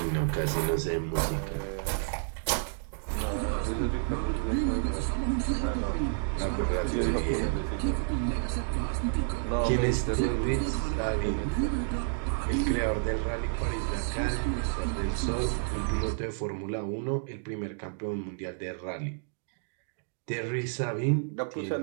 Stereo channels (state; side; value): silent; left; digital silence